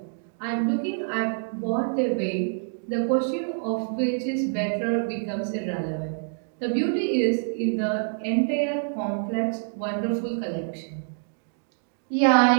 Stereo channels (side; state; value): left; silent; digital silence